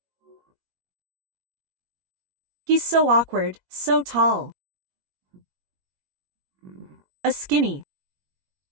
He's so awkward, so tall. A skinny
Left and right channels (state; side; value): late; left; 21 ms